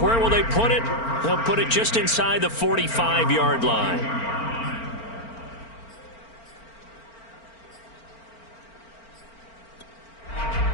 will they put it? They'll put it just inside the 45-yard line.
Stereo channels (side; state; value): right; late; 4.4 ms